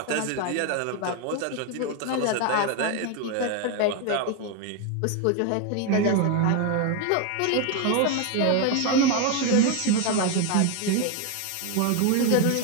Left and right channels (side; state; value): both; different; correlation 0.01